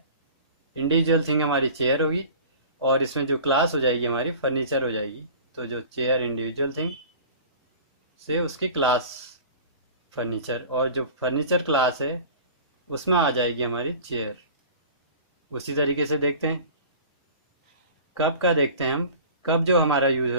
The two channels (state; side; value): inverted; both; correlation -0.41